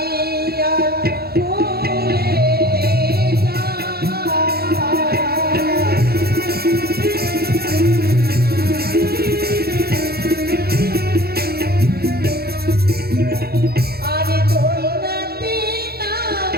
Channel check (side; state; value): left; late; 0.46 ms